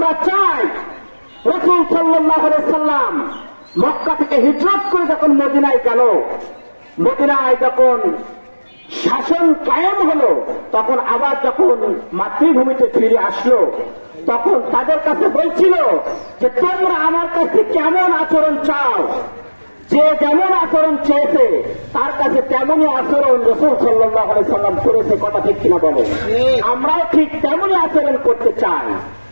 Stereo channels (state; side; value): inverted; both; correlation -1.00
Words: চাই রাসূল সাল্লাল্লাহু আলাইহি সাল্লাম মক্কা থেকে হিজরত করে যখন মদিনায় গেল, মদিনায় যখন শাসন কায়েম হলো, তখন আবার যখন মাতৃভূমিতে ফিরে আসলো, তখন তাদের কাছে বলছিল যে তোমরা আমার কাছে কেমন আচরণ চাও, যে যেমন আচরণ চেয়েছে তার কাছে তেমনই আচরণ রাসূল সাল্লাল্লাহু আলাইহি সাল্লাম করেছে। কথা ঠিক কিনা বলেন? আমরাও ঠিক তেমনই আচরণ করতে চাই,